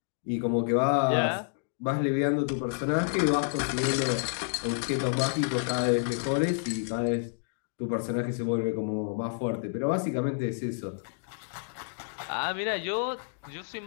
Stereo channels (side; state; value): right; silent; digital silence